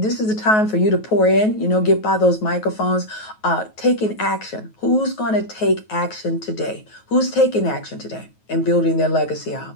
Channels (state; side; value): late; right; 9.3 ms